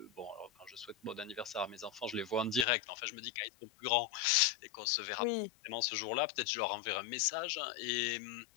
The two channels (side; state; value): right; drops out; at 2.7 s